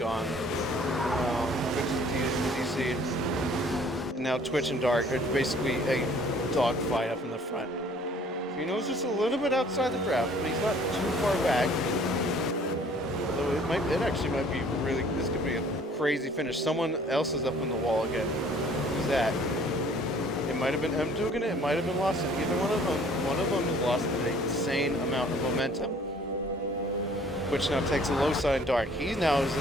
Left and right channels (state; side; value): normal; both; correlation 0.55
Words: And now Twitch and Dark are basically a dogfight up in the front. Fino's just a little bit outside the draft, but he's not too far back. Although it actually might be really, this could be a crazy finish. Someone else is up on the wall again. Who's that? It might have been M doing it, it might have been Lawson. Either one of them. One of them has lost an insane amount of momentum. Which now takes a low side Dark. He now is